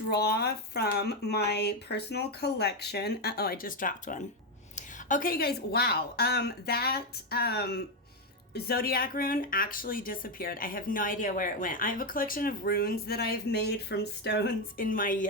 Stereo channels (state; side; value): normal; both; correlation 0.08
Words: from my personal collection. Uh-oh, I just dropped one. Okay, guys, wow. That zodiac rune actually disappeared. I have no idea where it went. I have a collection of runes that I've made from stones